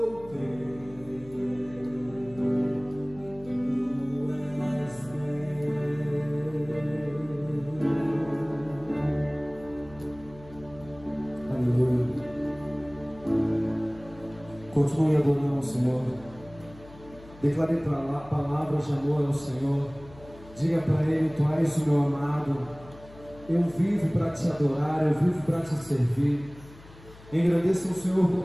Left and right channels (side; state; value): left; noise; hum, 20 dB below the sound